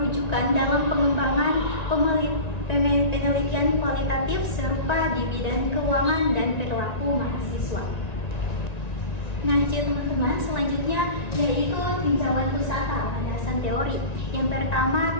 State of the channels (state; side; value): late; right; 1.9 ms